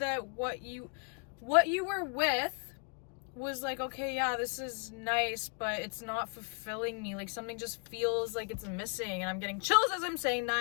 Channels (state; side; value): quieter; right; 39.0 dB